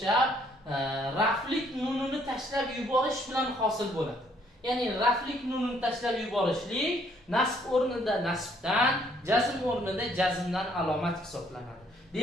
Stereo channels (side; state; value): both; normal; correlation 0.66